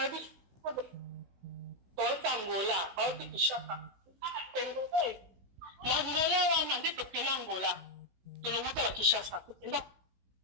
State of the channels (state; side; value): late; left; 16 ms